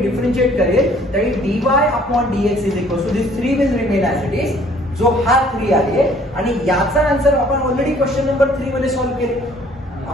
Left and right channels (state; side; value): normal; both; correlation 0.58